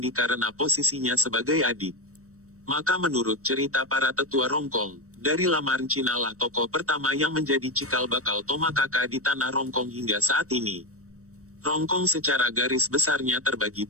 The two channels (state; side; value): late; left; 0.65 ms